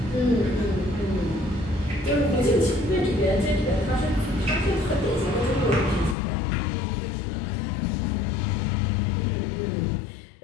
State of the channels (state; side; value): drops out; right; at 6.2 s